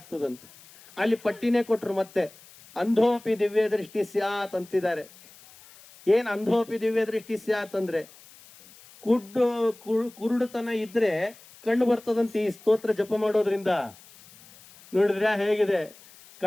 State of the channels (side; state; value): left; noise; hiss, 23 dB below the sound